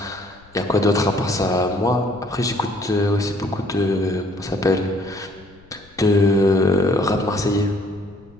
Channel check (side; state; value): left; noise; rumble, 27 dB below the sound